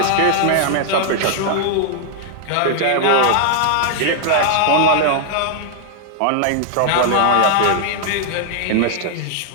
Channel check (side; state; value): both; different; correlation 0.00